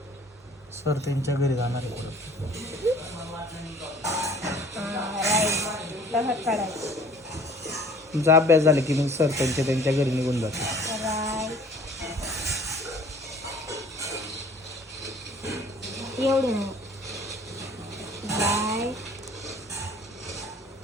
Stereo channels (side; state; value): both; normal; correlation 0.52